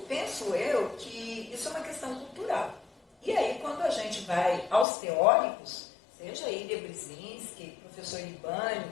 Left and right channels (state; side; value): drops out; right; at 4.9 s